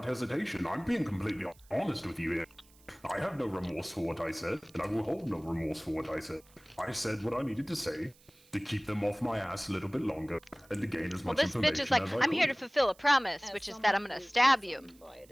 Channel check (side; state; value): right; noise; hiss, 28 dB below the sound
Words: hesitation. I'm being completely honest with you here. I have no remorse for what I said, and I will hold no remorse for what I said. I said what I needed to say to keep them off my ass a little bit longer and to gain as much information as I could. Well, this bitch is like, I'm here to fulfill a promise, which is that I'm gonna stab you.